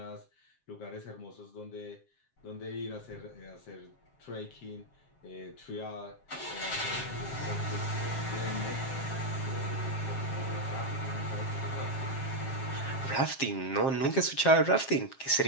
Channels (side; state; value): right; late; 7.5 ms